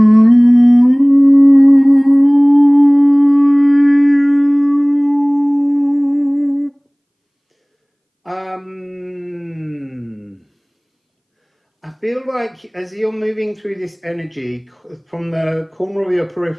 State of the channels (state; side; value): identical; both; correlation 1.00